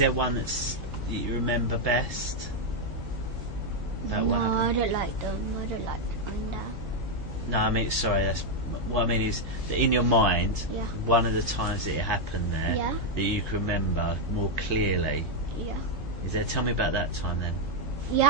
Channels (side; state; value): both; normal; correlation 0.01